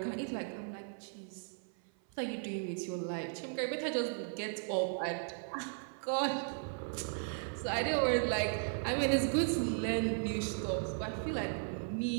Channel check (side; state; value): left; silent; 53 dB below the other